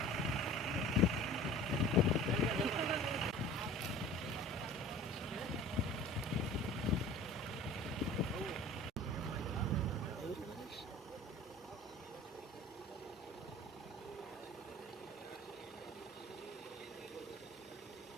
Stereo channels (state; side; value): normal; both; correlation 0.43